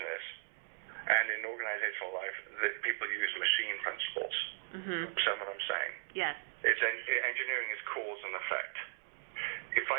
and in organizational life, people use machine principles. Mm-hmm. Understand what I'm saying? Yes. Engineering is cause and effect. If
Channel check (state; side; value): silent; left; 53 dB below the other